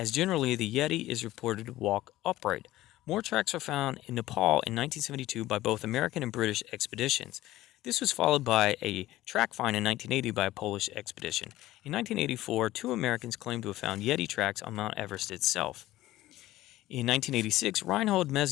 generally the Yeti is reported to walk upright. More tracks were found in Nepal in 1972 by both American and British expeditions. This was followed by a track find in 1980 by a Polish expedition. In 1984, 2 Americans claimed to have found Yeti tracks on Mount Everest itself. In 1986, Reinhold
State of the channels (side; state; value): right; quieter; 15.9 dB